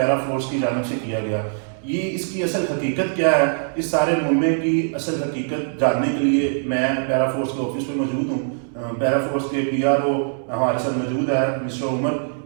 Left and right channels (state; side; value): silent; left; 64 dB below the other